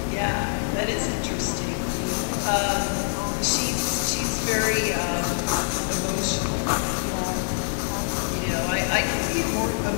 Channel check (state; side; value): silent; right; digital silence